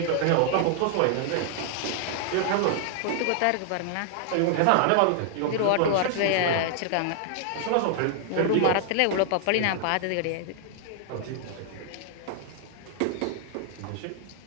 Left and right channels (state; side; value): different; both; correlation 0.00